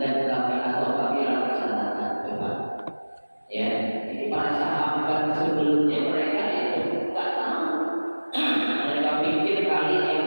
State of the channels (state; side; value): inverted; both; correlation -1.00